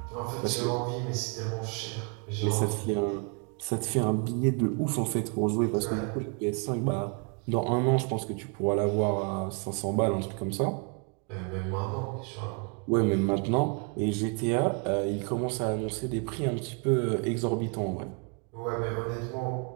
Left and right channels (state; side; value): quieter; left; 36.8 dB